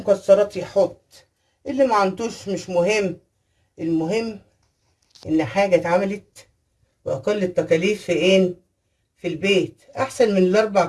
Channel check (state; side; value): identical; both; correlation 1.00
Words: يحط، اللي ما عندوش مش مهم. المهم ان حاجه اتعملت باقل التكاليف في ايه؟ في البيت، احسن من الاربع